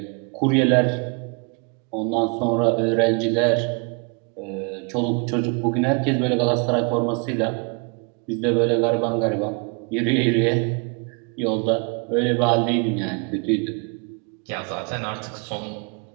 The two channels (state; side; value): quieter; left; 35.1 dB